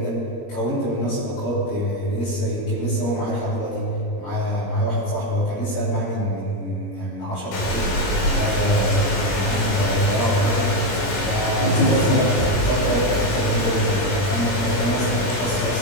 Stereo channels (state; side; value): late; right; 21 ms